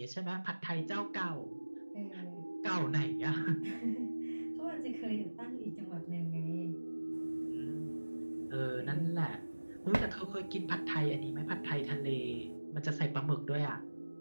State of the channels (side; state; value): both; inverted; correlation -1.00